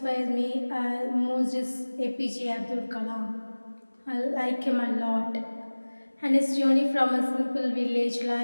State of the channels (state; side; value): inverted; both; correlation -1.00